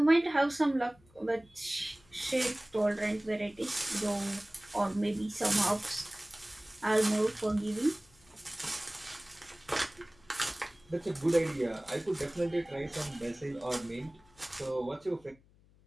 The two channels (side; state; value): left; noise; hum, 29 dB below the sound